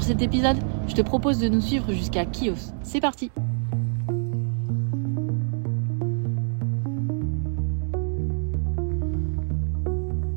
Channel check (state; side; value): silent; left; digital silence